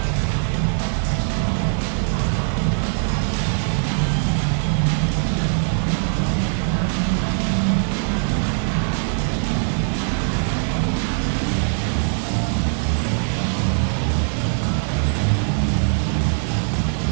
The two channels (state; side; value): silent; left; digital silence